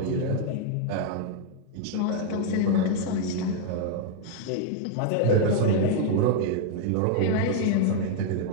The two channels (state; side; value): different; both; correlation 0.00